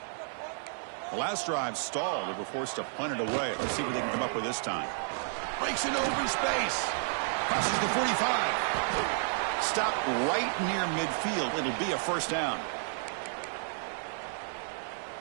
The last drive stalled. They were forced to punt it away. Let's see what they can come up with this time. Breaks into open space. Crosses the 45. Stopped right near midfield. It'll be a first down.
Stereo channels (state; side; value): silent; left; 57 dB below the other